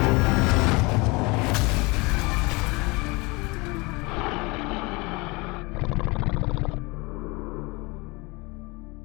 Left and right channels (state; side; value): quieter; right; 25.9 dB